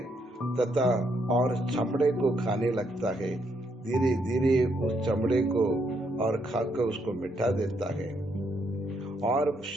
तथा और चमड़े को खाने लगता है। धीरे धीरे उस चमड़े को और खाकर उसको मिटा देता है और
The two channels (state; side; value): normal; both; correlation 0.75